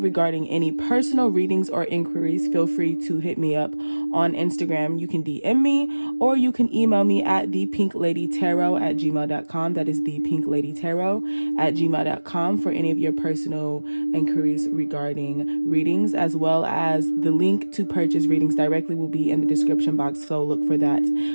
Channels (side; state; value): both; inverted; correlation -1.00